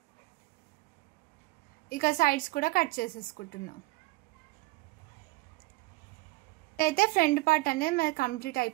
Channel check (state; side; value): quieter; left; 21.7 dB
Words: ఇక సైడ్స్ కూడా కట్ చేసేసుకుంటున్నాం. అయితే ఫ్రంట్ పార్ట్ అనేది మనకి కంప్లీట్